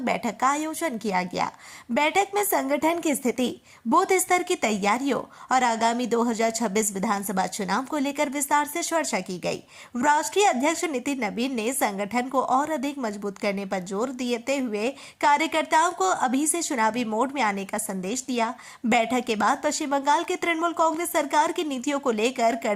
बैठक का आयोजन किया गया। बैठक में संगठन की स्थिति, बूथ स्तर की तैयारियों और आगामी 2026 विधानसभा चुनाव को लेकर विस्तार से चर्चा की गई। राष्ट्रीय अध्यक्ष नितिन नवीन ने संगठन को और अधिक मजबूत करने पर जोर देते हुए कार्यकर्ताओं को अभी से चुनावी मोड में आने का संदेश दिया। बैठक के बाद पश्चिम बंगाल की तृणमूल कांग्रेस सरकार की नीतियों को लेकर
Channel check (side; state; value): both; identical; correlation 1.00